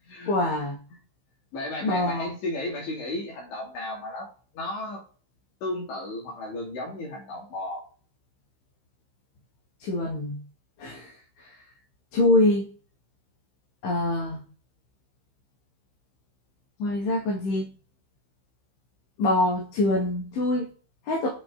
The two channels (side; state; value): right; late; 15 ms